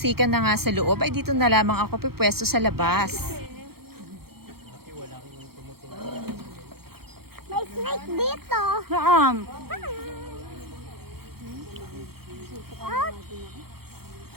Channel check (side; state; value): left; late; 0.95 ms